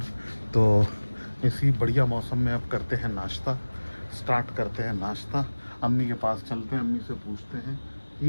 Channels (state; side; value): inverted; both; correlation -1.00